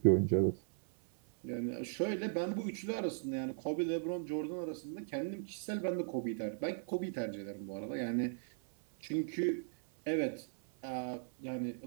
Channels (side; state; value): left; silent; 53 dB below the other